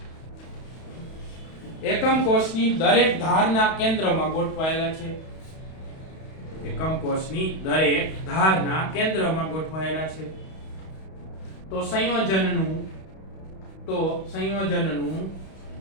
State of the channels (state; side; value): late; right; 31 ms